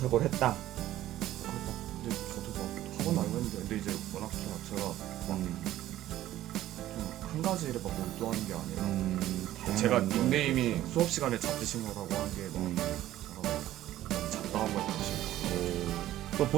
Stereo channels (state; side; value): quieter; left; 13.9 dB